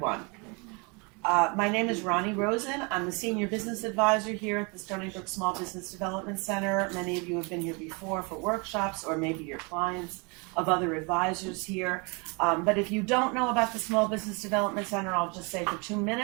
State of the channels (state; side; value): quieter; left; 31.0 dB